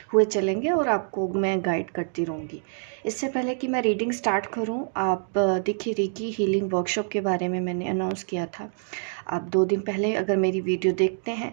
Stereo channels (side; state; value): left; silent; digital silence